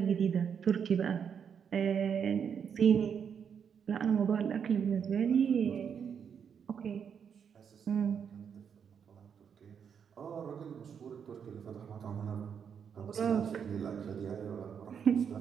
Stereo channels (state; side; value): quieter; left; 7.3 dB